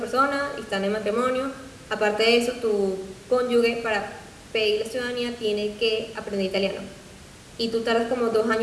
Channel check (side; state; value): both; identical; correlation 1.00